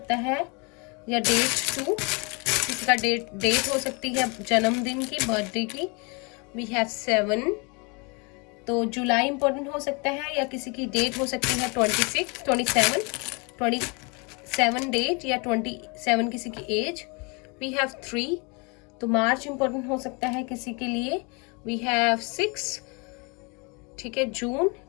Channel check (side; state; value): right; quieter; 31.0 dB